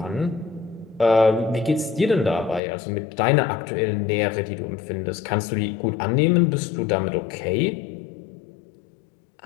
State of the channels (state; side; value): drops out; right; at 2.6 s